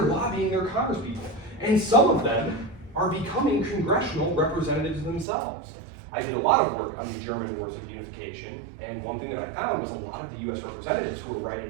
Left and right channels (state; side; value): drops out; left; at 5.2 s